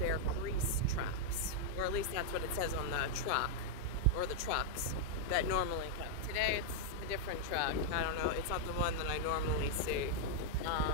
grease traps. Or at least that's what it says on the truck. Or the trucks that normally come. Today it's a different truck. I don't know. It's not the one that I normally see.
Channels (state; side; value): late; right; 2.2 ms